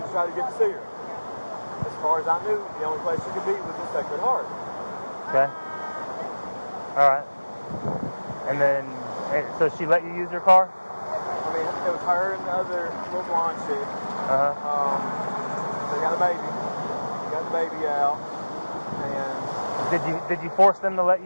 to try to get to see her. As far as I knew, the only place she could be was the Sacred Heart. Okay. All right. And then, so she let you use her car? I mean, it was her and the other little blonde chick. They got a baby. They got the baby out. And did you force them to let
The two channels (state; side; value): inverted; both; correlation -1.00